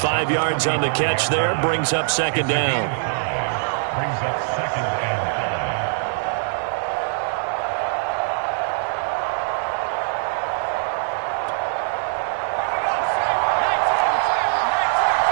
5 yards on the catch there, brings up 2nd down.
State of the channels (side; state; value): left; silent; digital silence